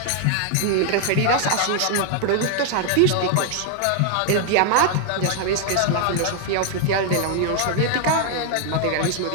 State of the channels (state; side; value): different; both; correlation 0.00